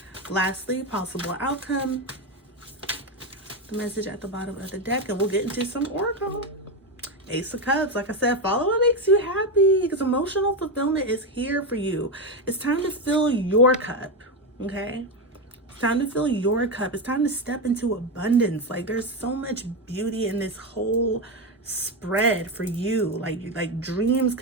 lastly, possible outcome. The message at the bottom of the deck, and we'll get into some oracle. Ace of Cups. Like I said, follow what makes you happy, because emotional fulfillment is here for you. It's time to fill your cup, okay? It's time to fill your cup. It's time to step into abundance. Like, there's so much beauty in this whole spread for you. Like dreams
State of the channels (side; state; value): both; normal; correlation 0.11